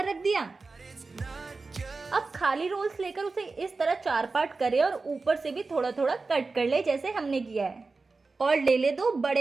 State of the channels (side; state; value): left; quieter; 3.9 dB